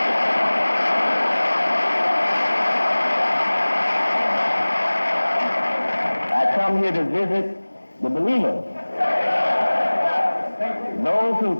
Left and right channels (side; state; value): both; inverted; correlation -1.00